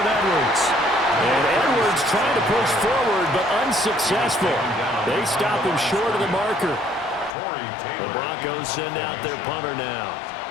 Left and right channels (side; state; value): right; drops out; at 7.3 s